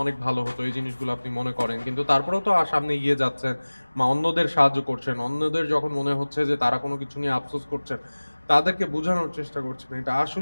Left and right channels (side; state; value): both; inverted; correlation -1.00